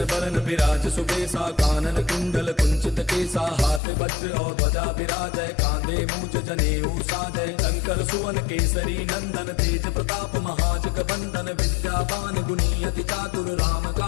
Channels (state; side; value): drops out; right; at 3.8 s